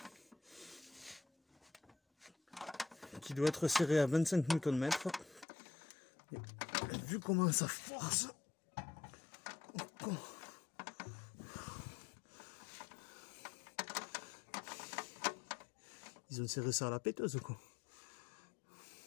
Qui doit être serré à 25 Nm. Et vu comment ça force, ils ont serré ça à la péteuse quoi.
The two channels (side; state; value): right; drops out; at 5.5 s